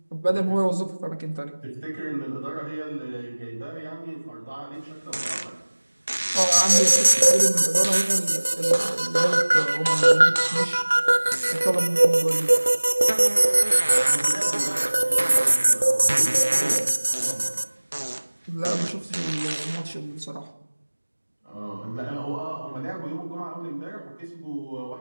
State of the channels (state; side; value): inverted; both; correlation -1.00